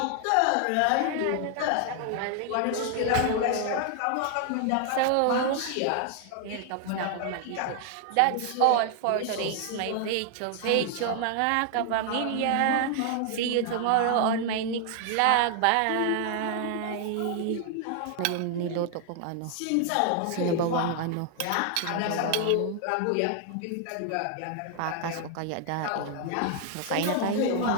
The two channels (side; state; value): both; different; correlation 0.00